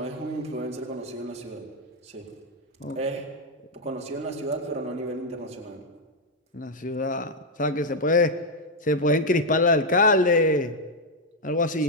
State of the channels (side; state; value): both; normal; correlation 0.01